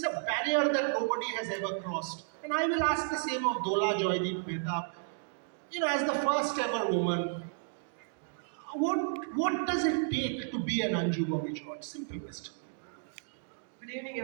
a barrier that nobody has ever crossed. And I will ask the same of Dola Joydeep Mehtab. As the first ever woman, what does it take to be an Anju Bobby George? Simple question. Good evening,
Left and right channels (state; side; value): silent; left; digital silence